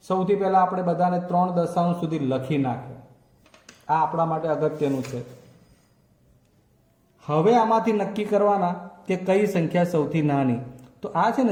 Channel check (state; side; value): identical; both; correlation 1.00